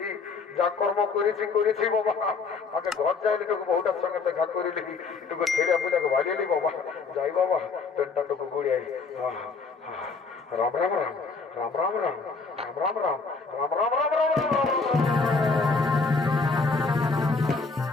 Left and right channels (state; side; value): quieter; right; 4.5 dB